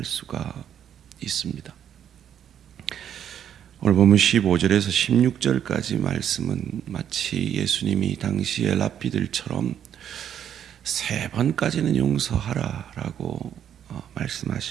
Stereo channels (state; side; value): quieter; left; 9.4 dB